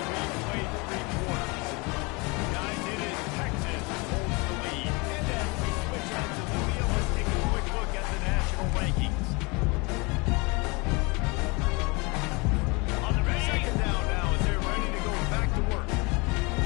we play 3 quarters. Guys, it is Texas holds the lead. And as we switch out to the wheel, let's take a quick look at the national rankings. On the ready. 2nd down now as they're ready to go back to work.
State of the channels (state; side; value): quieter; right; 27.8 dB